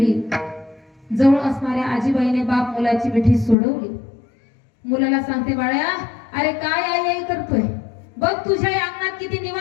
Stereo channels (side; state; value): right; drops out; at 3.6 s